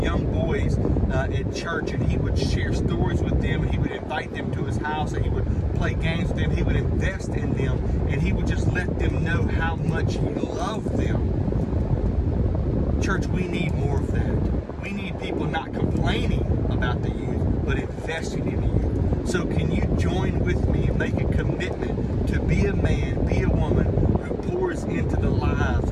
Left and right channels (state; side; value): identical; both; correlation 1.00